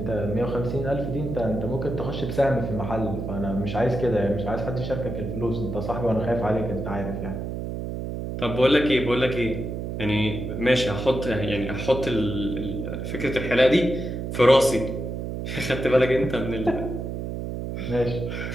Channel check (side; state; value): right; noise; hum, 5 dB below the sound